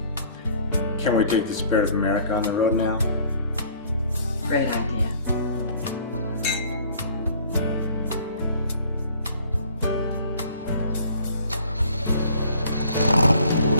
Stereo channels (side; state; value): both; inverted; correlation -0.53